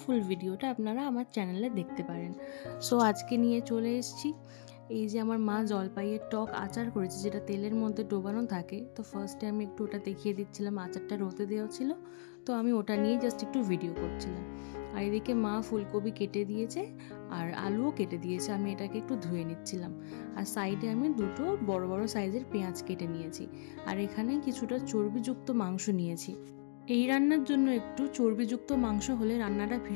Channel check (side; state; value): right; silent; digital silence